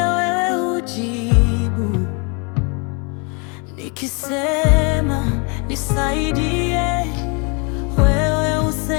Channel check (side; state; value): right; quieter; 33.3 dB